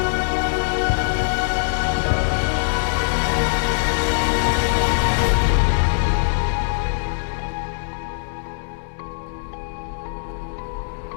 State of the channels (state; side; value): silent; right; digital silence